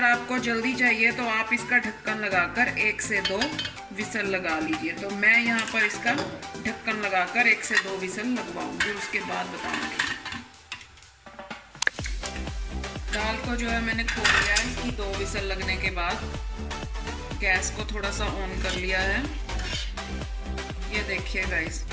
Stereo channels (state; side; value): identical; both; correlation 1.00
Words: आपको जल्दी चाहिए तो आप इसका ढक्कन लगाकर 1 से 2 विसल लगा लीजिए। तो मैं यहाँ पर इसका ढक्कन लगाकर 1 से 2 विसल लगवाऊंगी, उसके बाद बताऊंगी। दाल को जो है मैंने खोल लिया है। इसकी 2 विसल लगने के बाद गैस को थोड़ा सा ऑन कर लिया है। ये देखिए गाइस